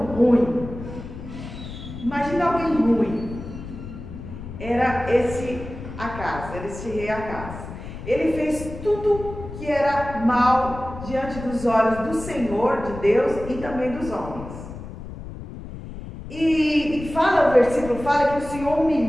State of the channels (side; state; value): left; noise; rumble, 11 dB below the sound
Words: ruim. Imagina alguém ruim. Era esse Acaz, era esse rei Acaz. Ele fez tudo que era mal diante dos olhos do Senhor, de Deus e também dos homens. E fala, o versículo fala que o Senhor